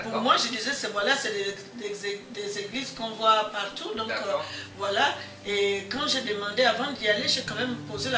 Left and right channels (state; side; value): identical; both; correlation 1.00